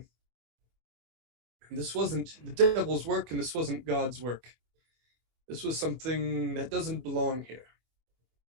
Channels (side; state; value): left; late; 24 ms